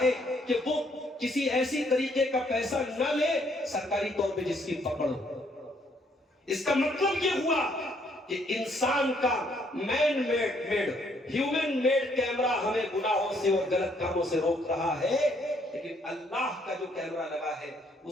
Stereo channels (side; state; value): both; normal; correlation 0.68